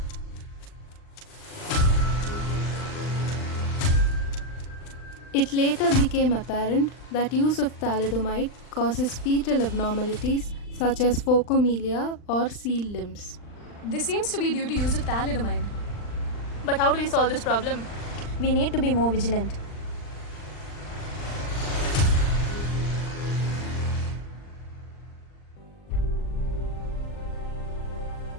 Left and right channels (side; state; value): right; late; 39 ms